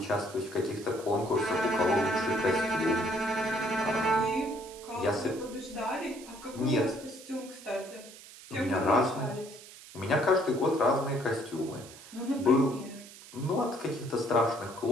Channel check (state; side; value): noise; right; hiss, 18 dB below the sound